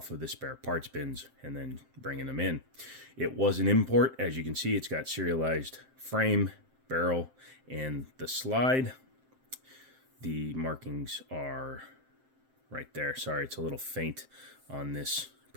of the spare parts bins and then bringing them in. It was an import. As you can see, it's got serialized frame, barrel, and the slide. The markings are right there. Sorry, it's a little faint on this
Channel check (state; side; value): late; left; 7.7 ms